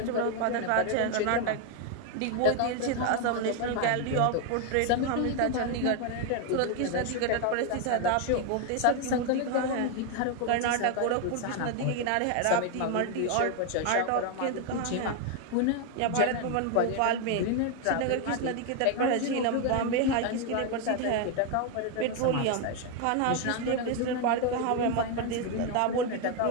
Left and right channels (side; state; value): both; different; correlation 0.01